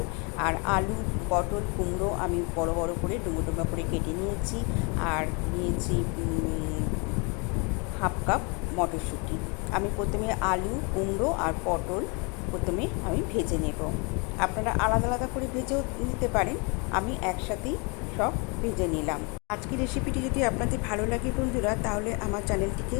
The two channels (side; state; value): right; quieter; 32.0 dB